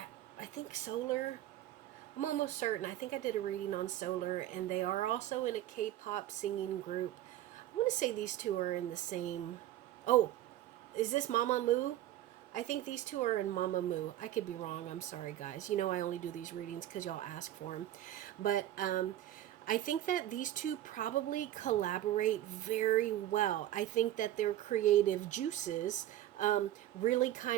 I think Solar, I'm almost certain. I think I did a reading on Solar, and they are also in a K-pop singing group. I want to say these two are in the same. Oh, is this Mama Moo? I think these two are in Mamamoo. I could be wrong. I'm sorry, guys. You know I only do these readings because y'all ask for them. But I think that these two probably collaborate very well. I think that their creative juices really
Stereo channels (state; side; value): quieter; left; 13.3 dB